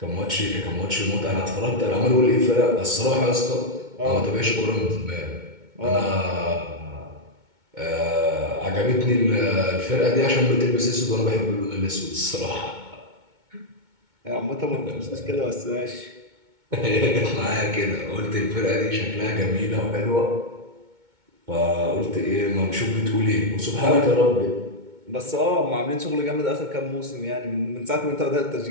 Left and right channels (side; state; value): left; late; 2.2 ms